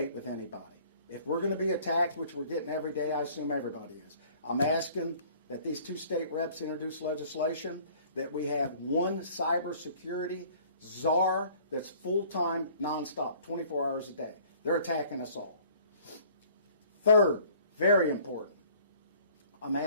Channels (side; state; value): both; inverted; correlation -0.53